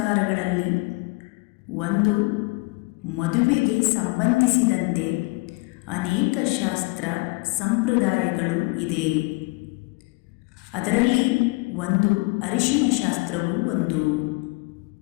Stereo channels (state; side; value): quieter; right; 26.2 dB